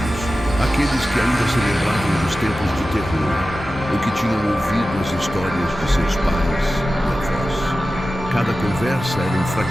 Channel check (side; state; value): both; normal; correlation 0.94